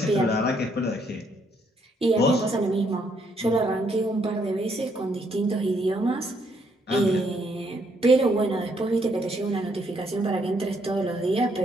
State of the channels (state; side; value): normal; both; correlation 0.71